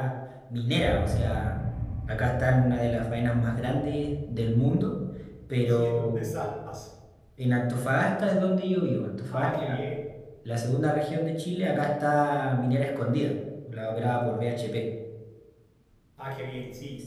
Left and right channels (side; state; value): both; identical; correlation 1.00